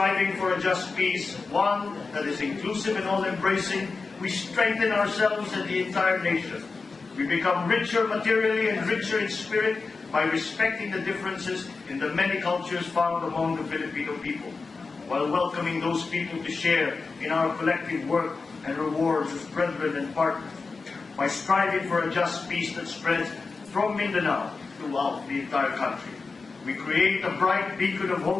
for a just peace, one that is inclusive and all-embracing, we strengthen ourselves and the entire nation. We become richer materially and richer in spirit by respecting the differences in the many cultures found among the Filipino people, while welcoming those people to share in our collective work and rewards as brethren and partners. By striving for a just peace that spreads from Mindanao throughout the entire country, we create a bright beacon of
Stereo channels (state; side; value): quieter; right; 4.3 dB